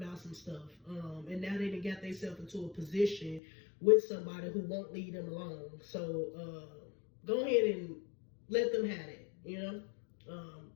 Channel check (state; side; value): drops out; right; at 3.4 s